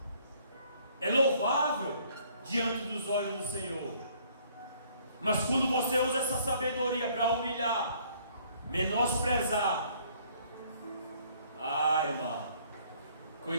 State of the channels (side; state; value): both; inverted; correlation -0.61